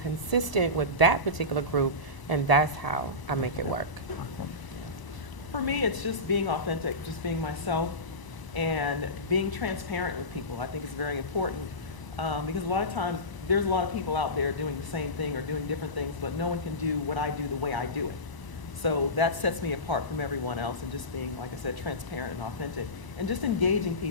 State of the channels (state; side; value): late; right; 1.0 ms